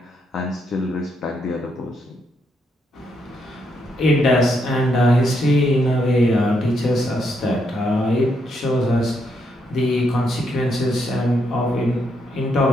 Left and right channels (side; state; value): both; normal; correlation 0.78